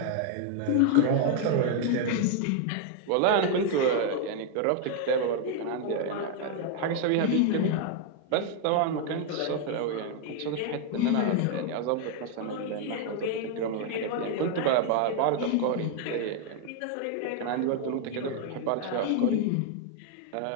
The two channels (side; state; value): both; different; correlation 0.00